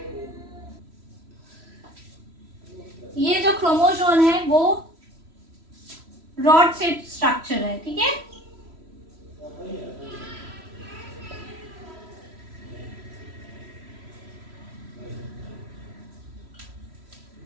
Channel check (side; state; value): left; late; 3.1 ms